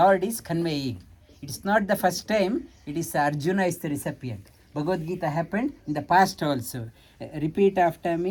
is conveying. It is not the first time, it is Arjuna is the recipient. Bhagavad Gita happened in the past also. Repeat after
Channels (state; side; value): identical; both; correlation 1.00